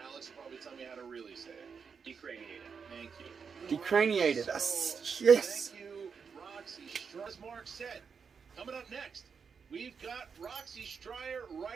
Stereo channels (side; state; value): left; quieter; 6.0 dB